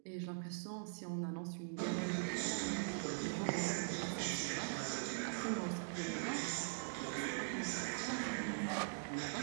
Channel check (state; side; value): silent; left; digital silence